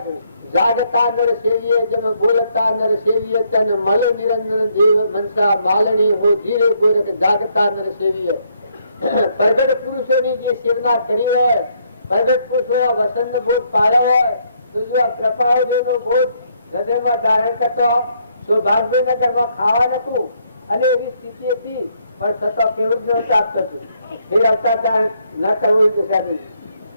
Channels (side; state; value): both; inverted; correlation -0.72